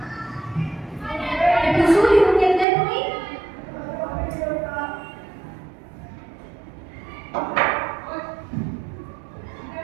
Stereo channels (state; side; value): drops out; left; at 2.7 s